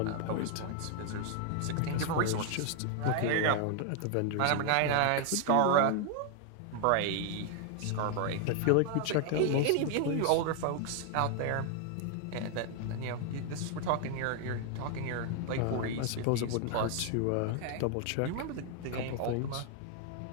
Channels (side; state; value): both; different; correlation 0.00